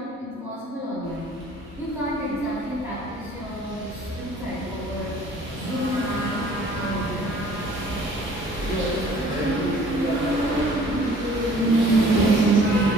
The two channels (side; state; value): both; normal; correlation 0.53